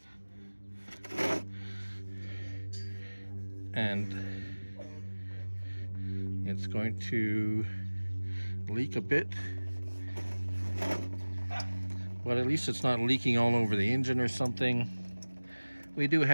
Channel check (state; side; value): inverted; both; correlation -1.00